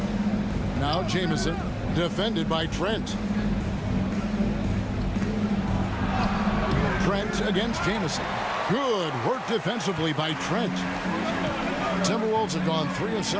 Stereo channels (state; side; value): identical; both; correlation 1.00